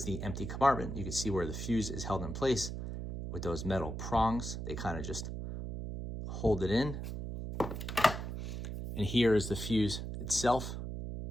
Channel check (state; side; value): noise; right; hum, 5 dB below the sound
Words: the empty compartment. You can see where the fuse is held in place with those metal prongs. They kind of just hold it in. And here is the fuse itself.